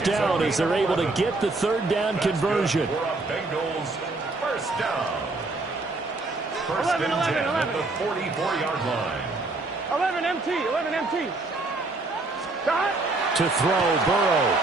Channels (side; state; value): left; quieter; 3.3 dB